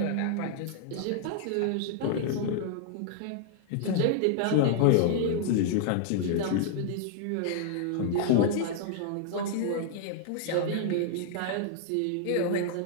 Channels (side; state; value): both; different; correlation -0.01